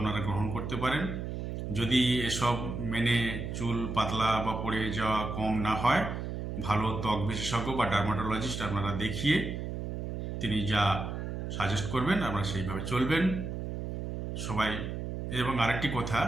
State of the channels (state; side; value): noise; right; hum, 5 dB below the sound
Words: গ্রহণ করতে পারেন। যদি এসব মেনে চুল পাতলা বা পড়ে যাওয়া কম না হয়, ভালো ত্বক বিশেষজ্ঞ বা ডার্মাটোলজিস্ট আপনারা দেখিয়ে তিনি যা সাজেস্ট করবেন আপনারা সেইভাবে চলবেন সবাই। এবং আরেকটি কথা,